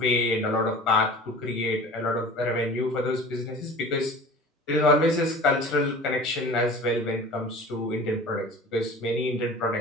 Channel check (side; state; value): both; normal; correlation 0.40